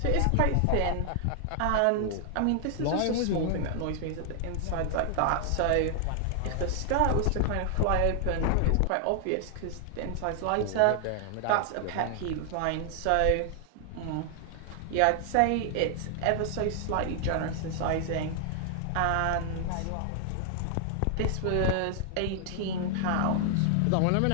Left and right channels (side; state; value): both; different; correlation 0.00